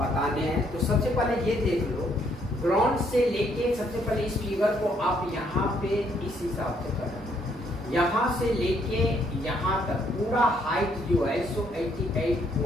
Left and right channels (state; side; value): normal; both; correlation 0.69